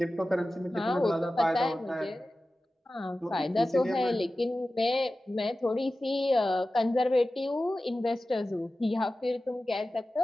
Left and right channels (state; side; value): normal; both; correlation 0.95